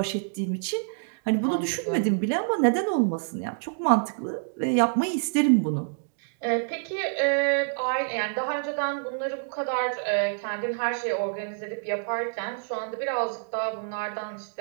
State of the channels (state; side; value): silent; left; digital silence